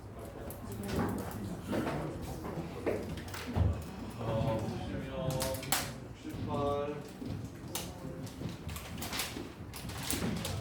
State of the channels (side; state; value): both; identical; correlation 1.00